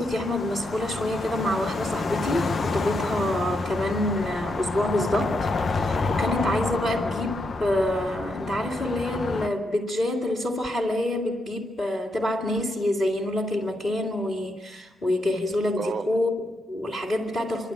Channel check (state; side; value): normal; both; correlation 0.81